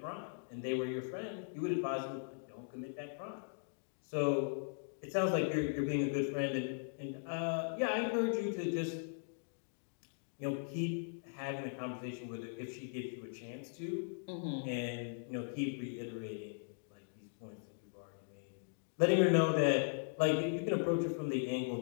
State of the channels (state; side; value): silent; right; digital silence